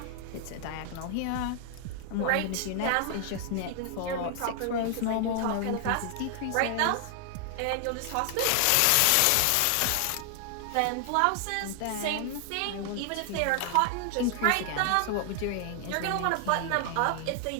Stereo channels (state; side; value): different; both; correlation 0.00